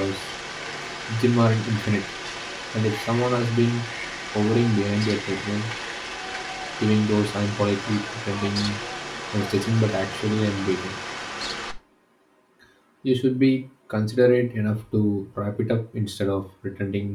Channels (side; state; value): both; identical; correlation 1.00